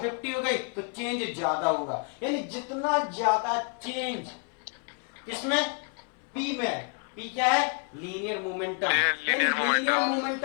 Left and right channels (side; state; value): right; quieter; 37.7 dB